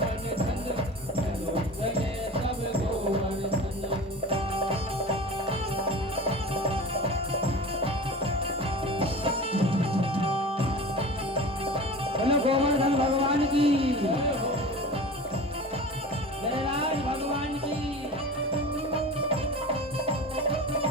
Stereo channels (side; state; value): both; normal; correlation 0.35